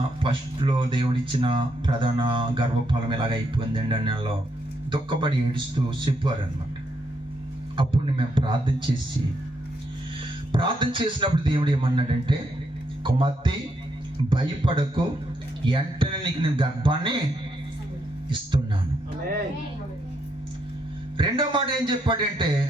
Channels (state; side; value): normal; both; correlation 0.77